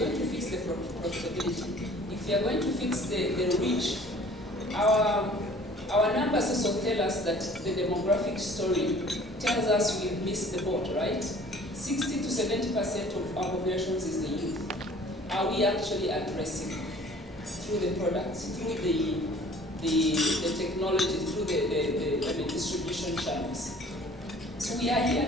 to fix the profitability, if you're going to fix the reach, our numbers also tell us that the demographic story tells us we've missed the boat, right? 60 to 70% of our populations is the youth. Are we actually addressing through the products, through the technology, through the distribution channels? So we are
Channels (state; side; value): normal; both; correlation 0.51